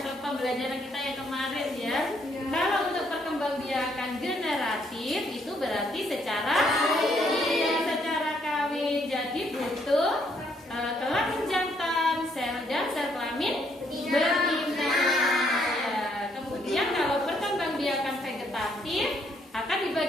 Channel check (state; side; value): normal; both; correlation 0.70